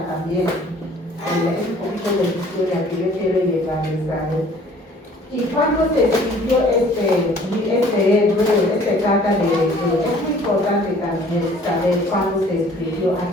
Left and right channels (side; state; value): both; normal; correlation 0.54